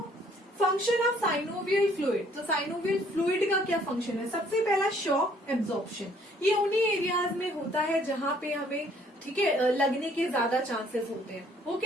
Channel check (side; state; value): both; normal; correlation 0.61